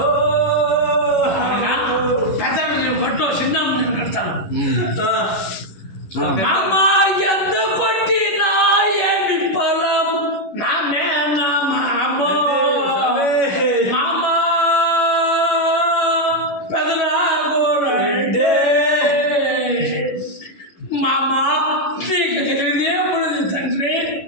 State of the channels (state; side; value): late; right; 11 ms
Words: పెద్ద కొట్టు చిన్న నేను కడతాను. మామ ఎంత కొట్టినా ఏమి పొలం నా మేన మామ మామ పెదరాగోరండే మామ నీకు తెలియదేమున్నది తండ్రి.